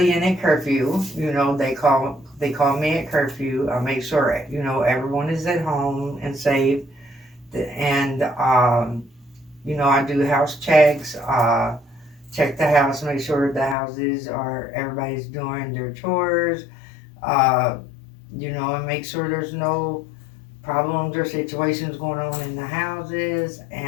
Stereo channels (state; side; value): drops out; right; at 13.8 s